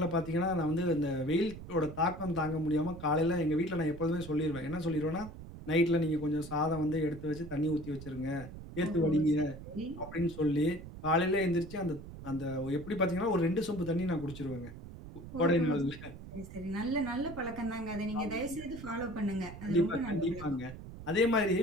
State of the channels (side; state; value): right; noise; rumble, 13 dB below the sound